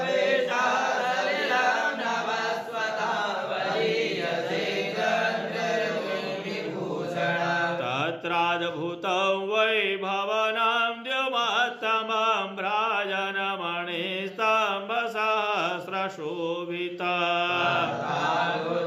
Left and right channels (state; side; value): identical; both; correlation 1.00